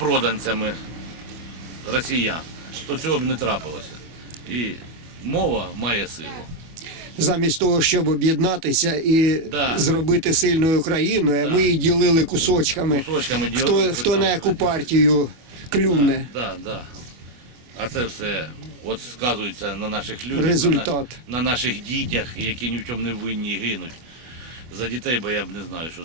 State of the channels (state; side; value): late; left; 24 ms